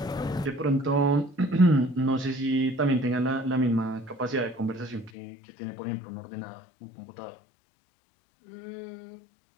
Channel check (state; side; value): drops out; right; at 5.1 s